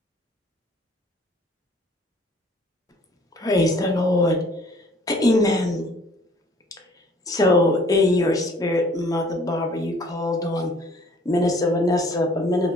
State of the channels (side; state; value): both; normal; correlation 0.56